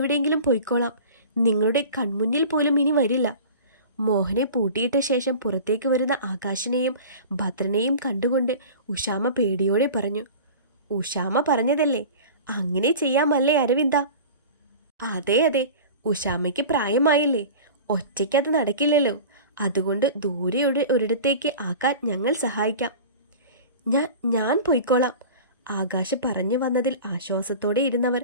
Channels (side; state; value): both; inverted; correlation -0.37